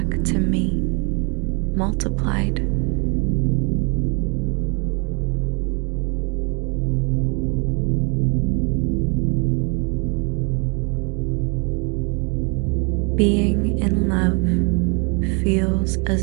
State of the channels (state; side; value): quieter; left; 33.5 dB